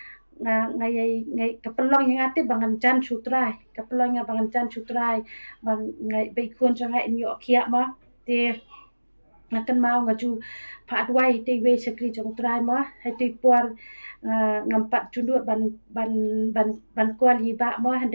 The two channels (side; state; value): both; inverted; correlation -1.00